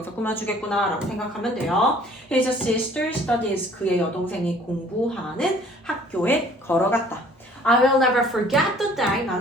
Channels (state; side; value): normal; both; correlation 0.55